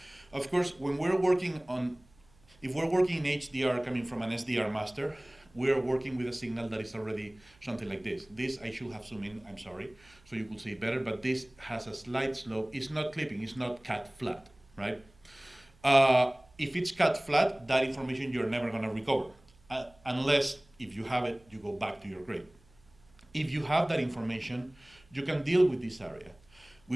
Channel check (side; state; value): right; noise; hum, 29 dB below the sound